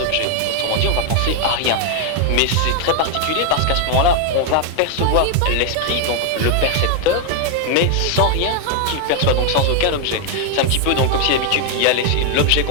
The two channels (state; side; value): different; both; correlation 0.01